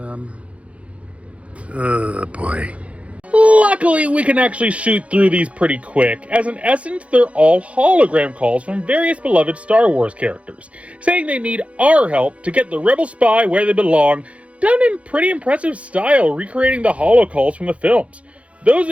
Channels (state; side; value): late; left; 0.063 ms